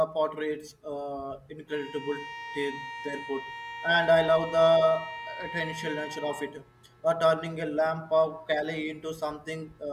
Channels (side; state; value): both; identical; correlation 1.00